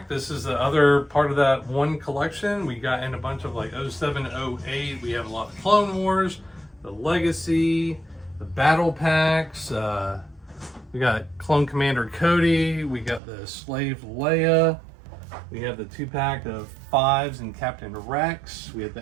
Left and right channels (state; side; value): drops out; left; at 13.2 s